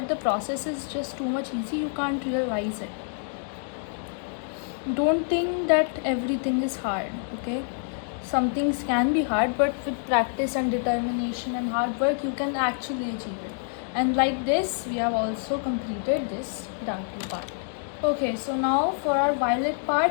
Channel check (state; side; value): silent; right; 60 dB below the other